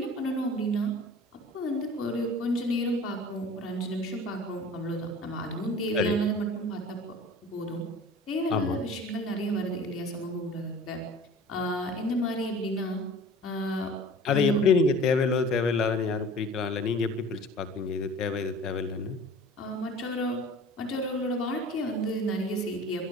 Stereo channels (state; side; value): normal; both; correlation 0.44